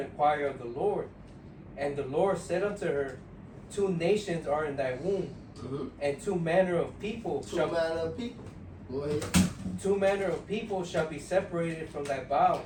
inquire of the Lord. And the Lord said unto her, 2 nations are in thy womb, and 2 manner of people Two manner of people. Go ahead. 2 manner of people shall be separated from thy bowels,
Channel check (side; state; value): both; identical; correlation 1.00